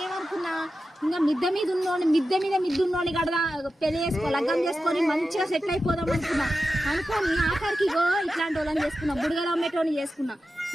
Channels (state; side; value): normal; both; correlation 0.92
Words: ఇంకా మిద్ద మీద ఉన్నోని కడదా పెళ్లి చేసుకో లగ్గం చేసుకొని మంచిగా సెటిల్ అయిపోదాం అనుకోని ఆఖరికి ఇట్లాంటి వాళ్ళని చేసుకున్నా. బుడగల అమ్మేటోని చేసుకున్నా.